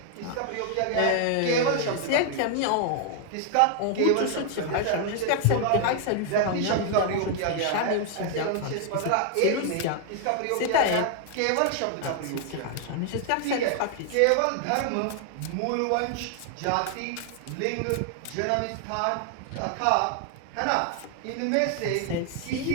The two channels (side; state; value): both; different; correlation 0.00